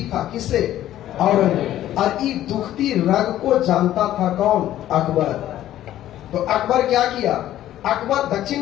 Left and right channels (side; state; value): right; quieter; 13.0 dB